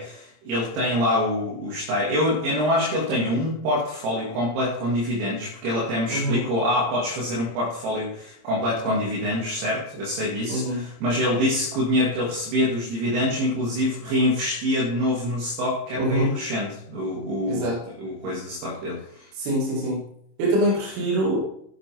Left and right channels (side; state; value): left; late; 26 ms